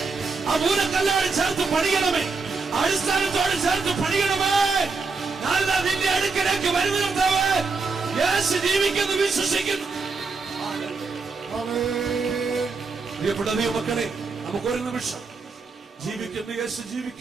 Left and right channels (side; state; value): left; quieter; 4.4 dB